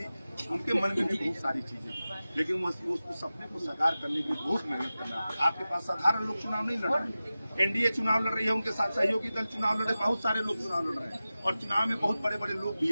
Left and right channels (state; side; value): inverted; both; correlation -0.95